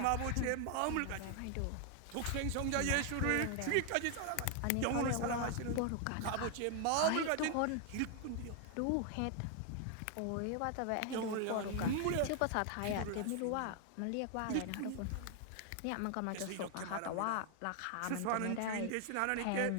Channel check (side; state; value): both; different; correlation 0.00